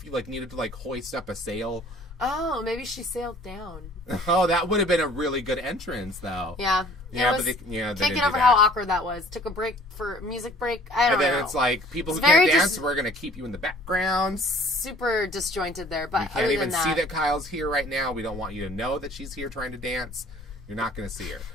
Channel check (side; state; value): both; normal; correlation 0.53